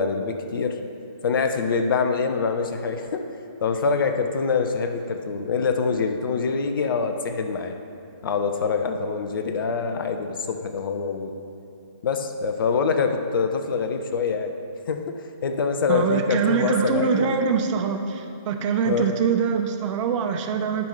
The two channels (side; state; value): both; inverted; correlation -0.40